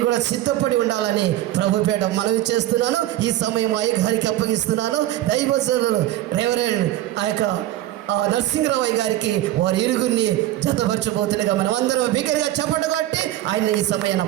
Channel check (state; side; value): quieter; left; 14.3 dB